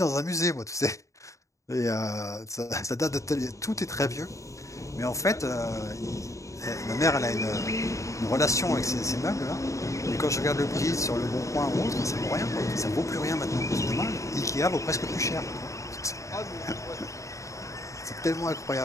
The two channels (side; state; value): right; late; 0.15 ms